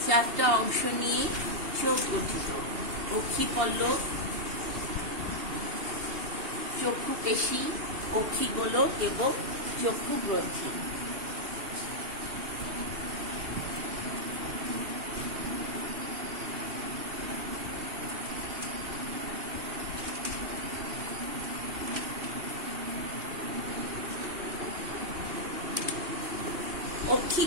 4টা অংশ নিয়ে চোখ গঠিত: অক্ষিপল্লব, চক্ষু পেশী, অক্ষিগোলক এবং চক্ষু গ্রন্থি।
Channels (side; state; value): left; late; 2.8 ms